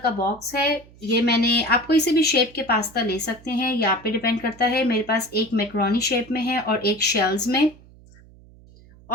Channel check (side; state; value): right; noise; hum, 24 dB below the sound